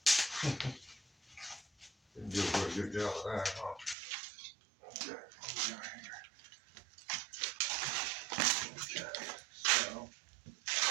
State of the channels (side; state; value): left; drops out; at 4.0 s